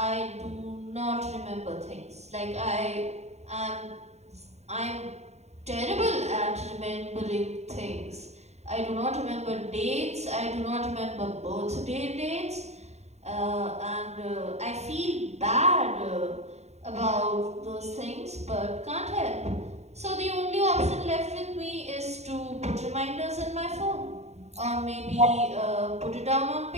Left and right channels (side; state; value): left; late; 0.32 ms